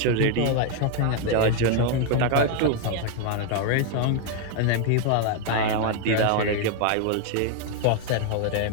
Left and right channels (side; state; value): both; different; correlation 0.01